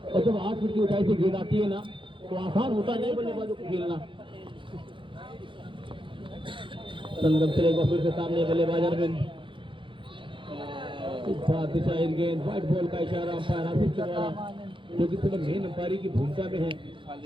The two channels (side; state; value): left; late; 0.24 ms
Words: और जब 8 फीट की ऊंचाई से गेंद आती है ना तो आसान होता नहीं बल्लेबाजों को खेलना। संगम चलेगा फिर से सामने बल्लेबाज अरविंद, दिशाहीन गेंद, व्हाइट बॉल का इशारा अंपायर आसिफ के द्वारा, जो कि सिर्फ मेन अंपायरी की भूमिका में है।